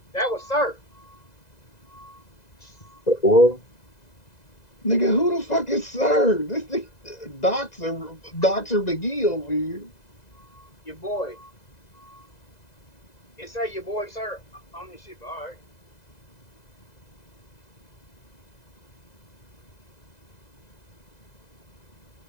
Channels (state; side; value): late; right; 2.0 ms